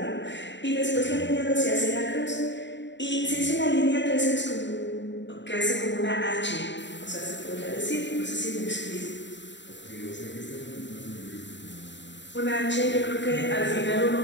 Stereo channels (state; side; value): late; right; 0.53 ms